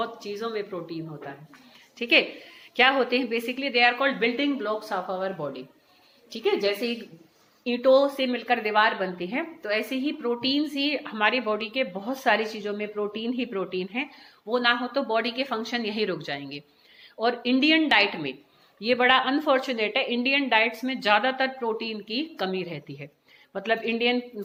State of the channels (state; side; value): identical; both; correlation 1.00